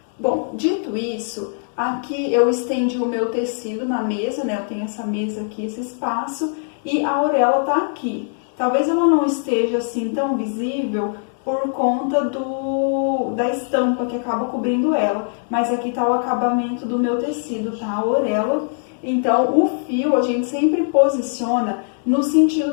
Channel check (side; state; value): right; silent; digital silence